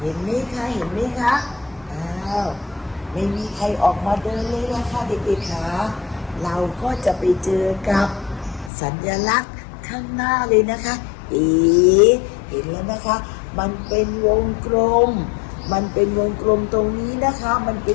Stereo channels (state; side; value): drops out; right; at 8.7 s